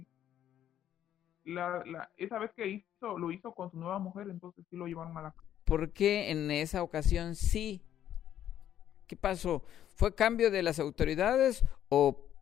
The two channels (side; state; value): right; quieter; 10.9 dB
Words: esa vez que lo hizo con su nueva mujer, entonces sí lo llevaron a la cárcel. ¿Por qué en esa ocasión sí? ¿Qué pasó? ¿Fue cambio de las autoridades o